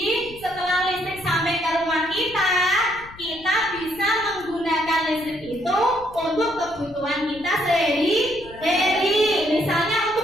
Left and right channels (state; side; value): noise; left; rumble, 20 dB below the sound